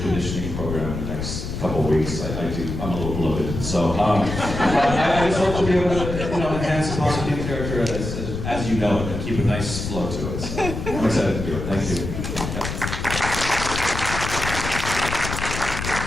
conditioning program in the next couple of weeks. I'm a little bloated, so I just hope to be able to, enhance the positive character as you know it, and keep a nice flow to it. So I'm excited to do it. Thank you.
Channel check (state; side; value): noise; left; rumble, 5 dB below the sound